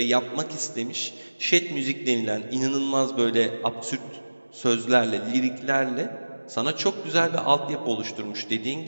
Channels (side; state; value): both; inverted; correlation -1.00